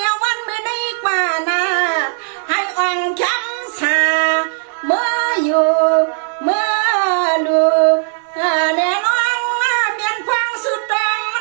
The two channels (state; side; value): silent; left; digital silence